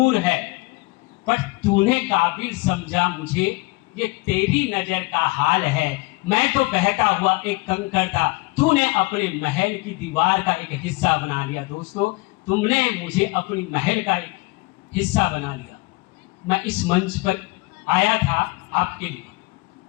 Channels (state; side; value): quieter; right; 24.5 dB